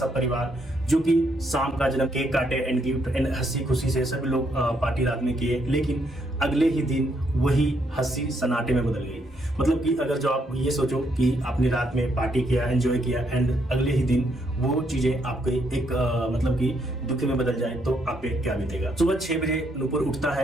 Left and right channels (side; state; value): both; normal; correlation 0.74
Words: परिवार जो कि शाम का जन्म केक काटे एंड गिफ्ट एंड हंसी खुशी से सभी लोग पार्टी रात में किए। लेकिन अगले ही दिन वही हंसी सन्नाटे में बदल गई। मतलब कि अगर जो आप ये सोचो कि आपने रात में पार्टी किया, एंजॉय किया एंड अगले ही दिन वो चीजें आपके एक मतलब कि दुख में बदल जाए तो आप पे क्या बीतेगा। सुबह 6 बजे नुपुर उठता